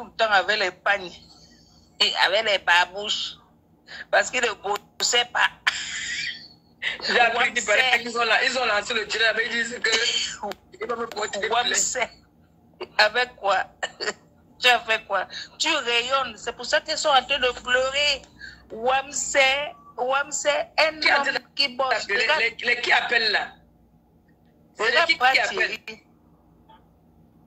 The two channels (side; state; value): both; identical; correlation 1.00